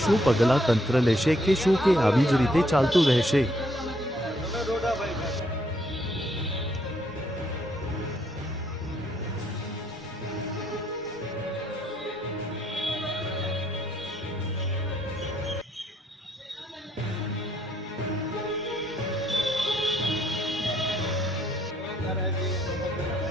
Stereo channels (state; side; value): normal; both; correlation 0.70